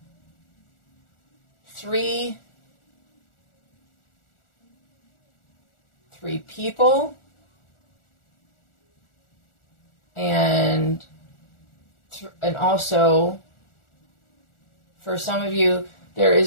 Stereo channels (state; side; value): late; right; 1.4 ms